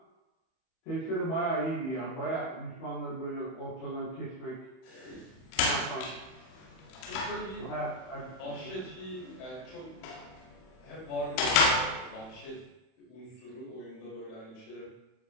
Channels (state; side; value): late; right; 31 ms